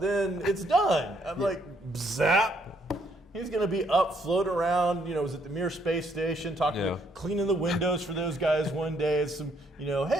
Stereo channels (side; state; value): both; normal; correlation 0.70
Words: it's done. I'm like, zap. He's going to be up, floating around, was at the Mir Space Station, cleaning the windows for those guys one day. It's some,